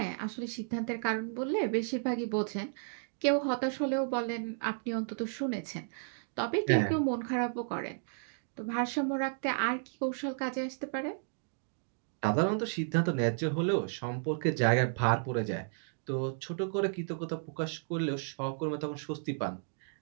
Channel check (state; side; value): silent; left; digital silence